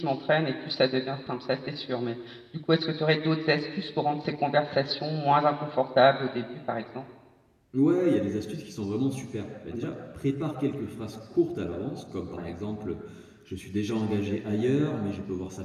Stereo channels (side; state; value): both; identical; correlation 1.00